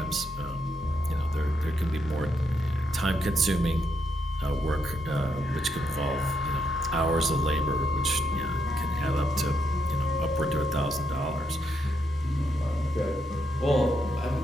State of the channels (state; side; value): normal; both; correlation 0.79